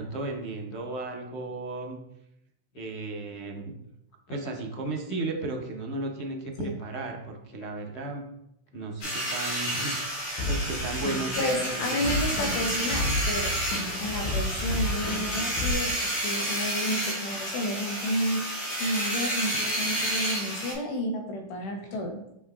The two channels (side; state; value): right; late; 15 ms